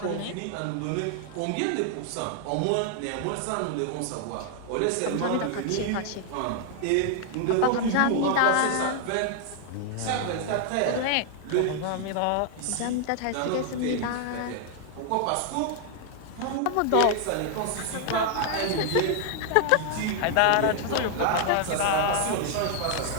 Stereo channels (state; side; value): different; both; correlation 0.00